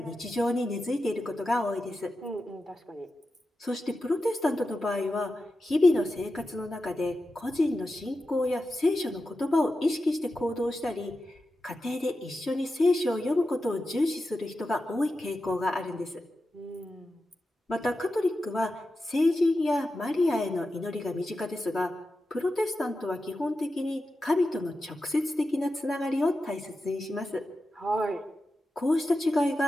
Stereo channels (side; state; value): both; normal; correlation 0.91